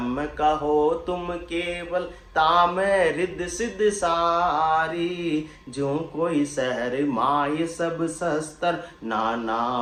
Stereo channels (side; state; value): both; identical; correlation 1.00